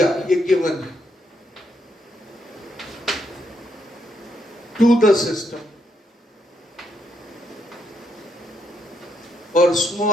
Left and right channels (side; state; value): both; normal; correlation 0.77